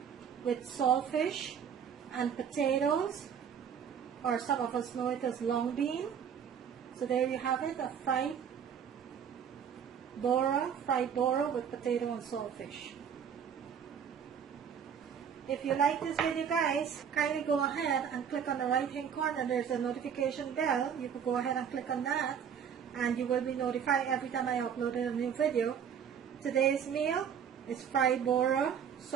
with saltfish and potatoes, or some of us know it as long bean. So there you have it, a fried Bora with potato and saltfish. If you like this video, guys, kindly go ahead and click on the right hand corner. There's a notification bell. You can go ahead and click on that and you will be notified every time I upload a new video. Today's meal is fried Bora,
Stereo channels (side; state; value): left; quieter; 7.9 dB